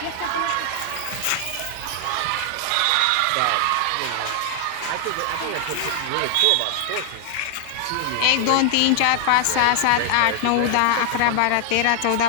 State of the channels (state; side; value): different; both; correlation 0.00